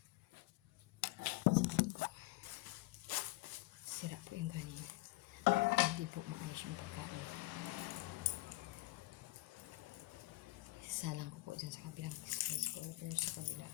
Sira po yung kanin. Hindi po maayos yung pagkain. Isalang ko po dyan sa kabilang space ko. Pero sa kabila.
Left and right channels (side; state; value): right; quieter; 20.6 dB